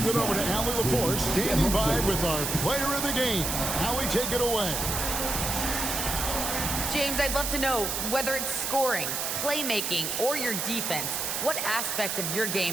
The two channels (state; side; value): noise; right; hiss, 1 dB below the sound